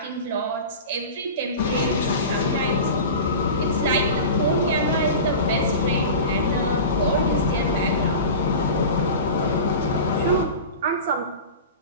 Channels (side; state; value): both; inverted; correlation -0.32